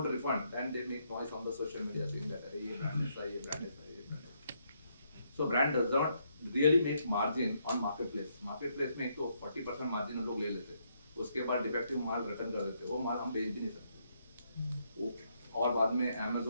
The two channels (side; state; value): both; inverted; correlation -0.75